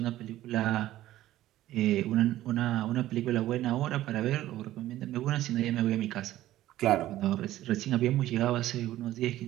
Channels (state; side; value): quieter; left; 14.4 dB